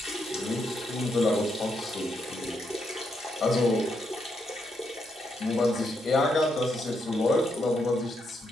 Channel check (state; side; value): normal; both; correlation 0.79